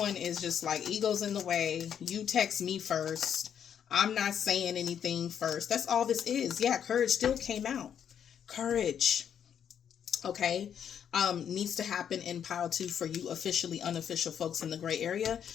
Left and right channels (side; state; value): right; quieter; 8.6 dB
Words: is just like, ego's in the way. You text me first. I'm not saying anything first. That's all this is. Yeah, courage still came out. Courage, okay, needs to happen in pile 2 for you officially unofficial folks in the gray area,